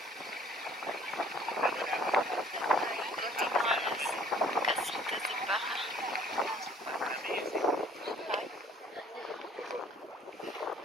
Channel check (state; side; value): normal; both; correlation 0.55